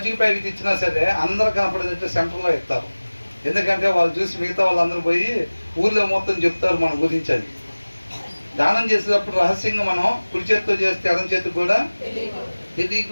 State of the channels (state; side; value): inverted; both; correlation -1.00